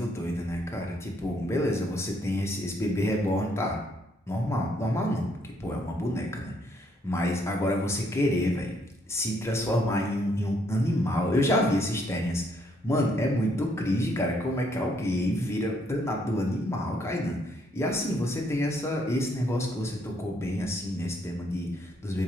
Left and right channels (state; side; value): normal; both; correlation 0.70